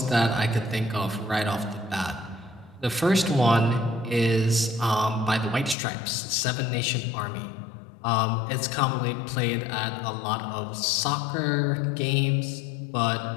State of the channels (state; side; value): drops out; right; at 5.8 s